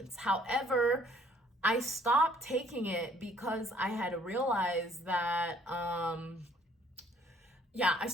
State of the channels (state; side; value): normal; both; correlation 0.61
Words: However, I stopped taking it because I had realized that I